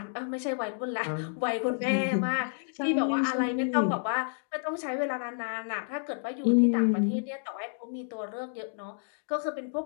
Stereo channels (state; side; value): silent; right; digital silence